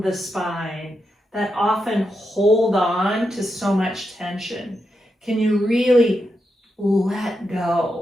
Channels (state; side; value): normal; both; correlation 0.85